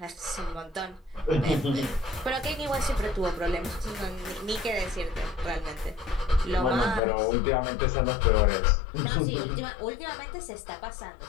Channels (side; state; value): right; drops out; at 7.0 s